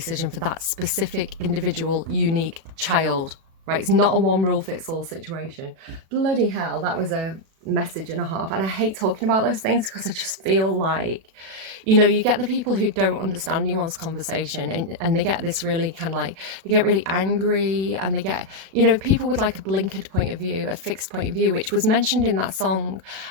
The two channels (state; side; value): late; left; 36 ms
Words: for that specific individual, unique child, right? It's not a one rule fits all situation. Bloody hell, that was a message and a half. And I hate talking about those things because I just feel like, you know, you get the people who don't understand nuanced conversation, and they get this really kind of like, they get really angry, and they get, you know, people with like a blinkered point of view, a fixed point of view, which was mentioned in that song,